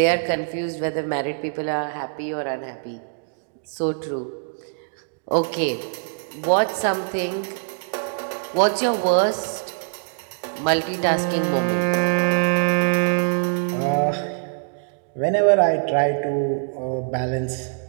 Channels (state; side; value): silent; left; digital silence